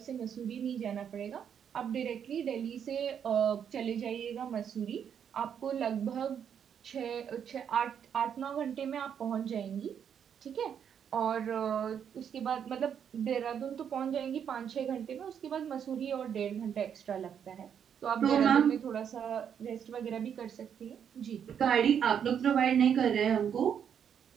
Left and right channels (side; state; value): left; quieter; 8.2 dB